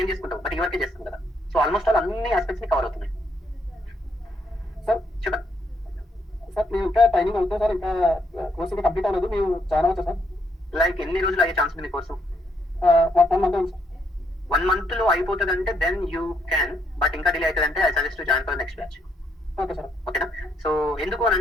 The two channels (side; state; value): both; normal; correlation 0.74